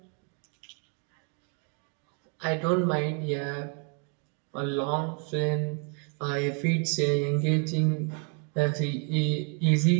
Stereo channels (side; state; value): left; quieter; 37.1 dB